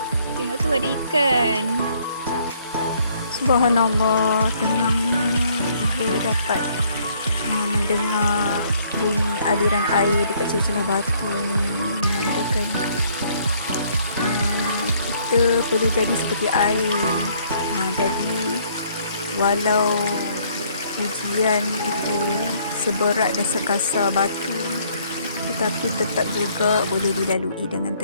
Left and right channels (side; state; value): both; inverted; correlation -0.64